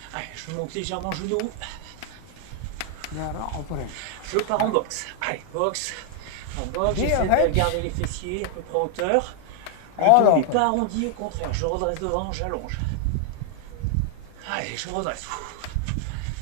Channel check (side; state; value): both; different; correlation 0.00